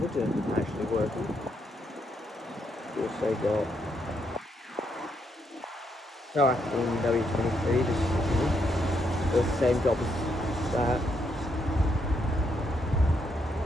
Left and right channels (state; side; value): normal; both; correlation 0.77